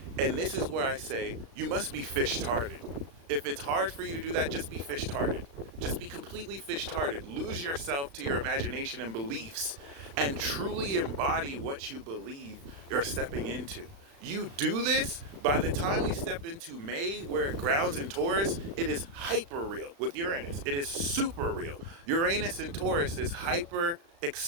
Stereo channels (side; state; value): left; late; 35 ms